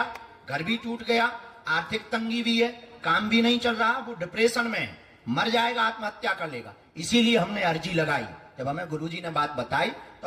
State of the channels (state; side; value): identical; both; correlation 1.00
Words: घर भी टूट गया, आर्थिक तंगी भी है, काम भी नहीं चल रहा, वो डिप्रेशन में है, मर जाएगा, आत्महत्या कर लेगा। इसीलिए हमने अर्जी लगाई। जब हमें गुरुजी ने बात बताई तो